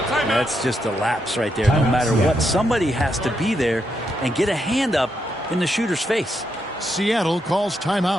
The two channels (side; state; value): both; normal; correlation 0.81